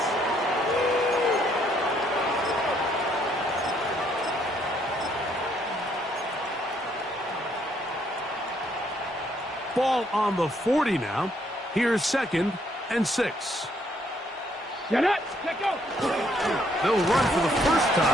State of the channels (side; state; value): both; normal; correlation 0.69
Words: Ball on the 40 now. Here's 2nd and 6. Get up. Let go. They'll run for the first